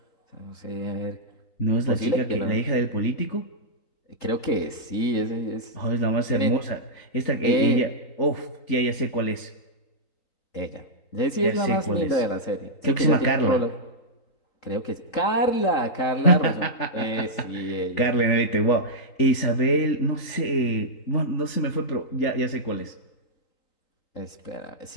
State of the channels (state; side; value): late; right; 3.9 ms